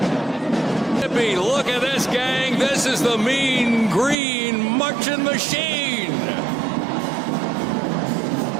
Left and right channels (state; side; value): drops out; left; at 4.2 s